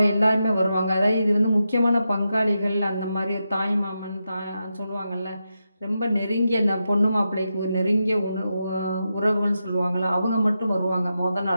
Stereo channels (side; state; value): both; inverted; correlation -0.88